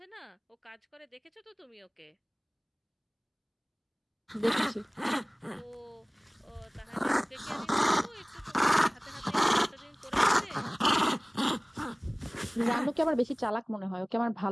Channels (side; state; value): both; identical; correlation 1.00